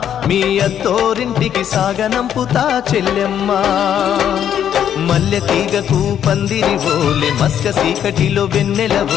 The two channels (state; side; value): quieter; right; 9.6 dB